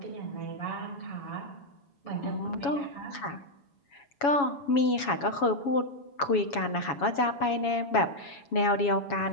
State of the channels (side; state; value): right; late; 7.2 ms